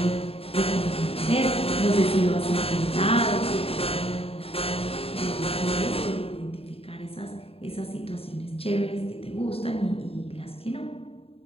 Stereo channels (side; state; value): right; late; 0.28 ms